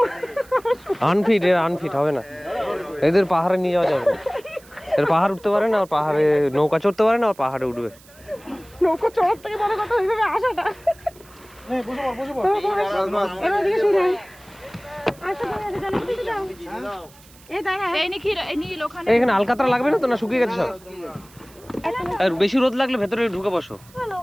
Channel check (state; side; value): noise; right; hiss, 25 dB below the sound